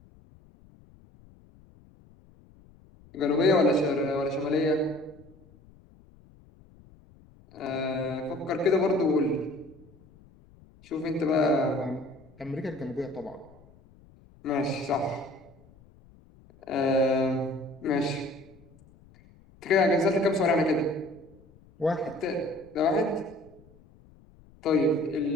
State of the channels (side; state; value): left; noise; rumble, 26 dB below the sound